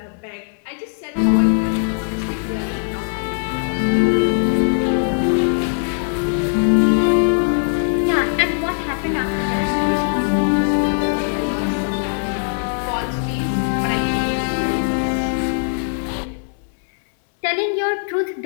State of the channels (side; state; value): right; silent; digital silence